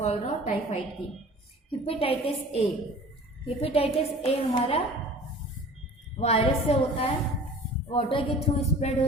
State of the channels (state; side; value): normal; both; correlation 0.44